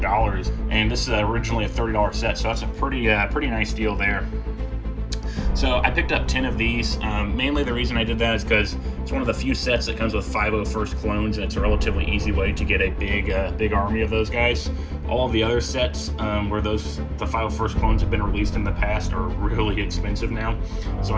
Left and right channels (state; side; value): identical; both; correlation 1.00